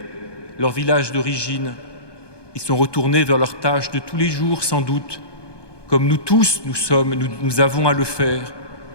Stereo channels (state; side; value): late; right; 1.2 ms